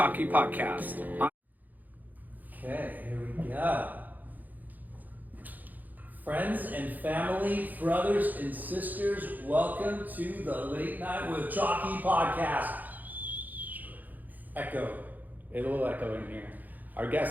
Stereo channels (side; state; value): left; late; 0.083 ms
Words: podcast. Okay, here we go. Friends and family, brothers and sisters, welcome to the Late Night with Chalky podcast. Echo. A little echo in here. Our